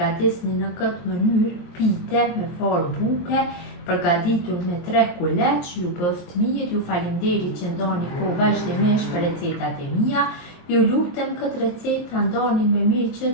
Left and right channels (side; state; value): right; late; 23 ms